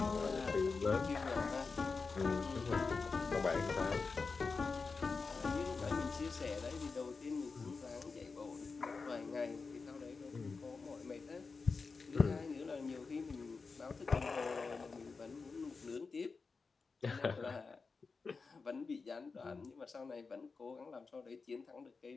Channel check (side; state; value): right; quieter; 4.5 dB